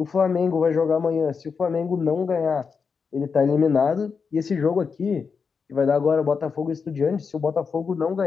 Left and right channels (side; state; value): right; quieter; 5.6 dB